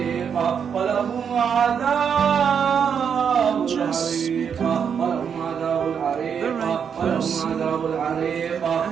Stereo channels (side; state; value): left; quieter; 7.3 dB